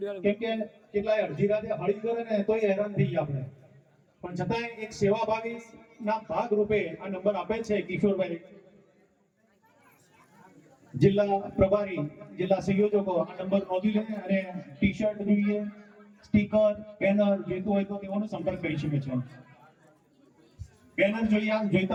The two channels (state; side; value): identical; both; correlation 1.00